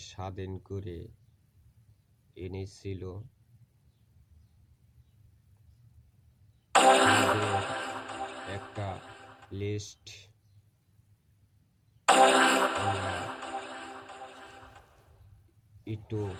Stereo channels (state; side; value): identical; both; correlation 1.00